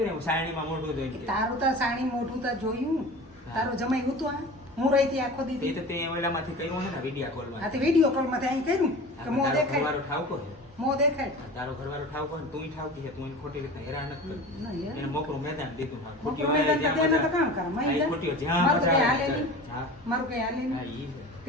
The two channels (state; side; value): normal; both; correlation 0.36